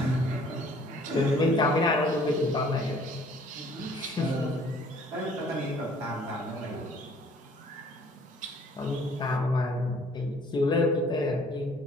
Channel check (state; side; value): normal; both; correlation 0.57